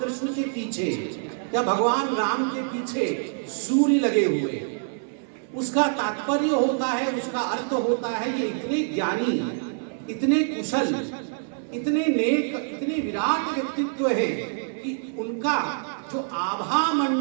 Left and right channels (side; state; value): left; silent; 61 dB below the other